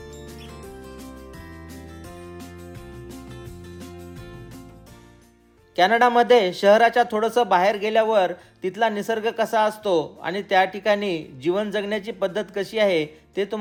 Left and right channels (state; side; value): identical; both; correlation 1.00